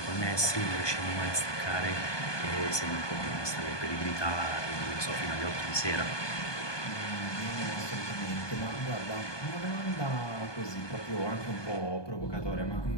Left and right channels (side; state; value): right; late; 1.2 ms